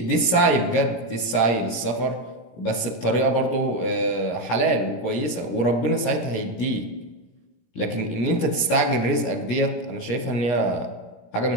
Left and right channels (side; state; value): right; late; 17 ms